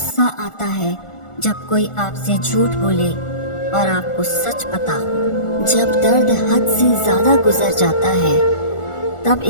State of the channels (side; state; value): right; late; 1.4 ms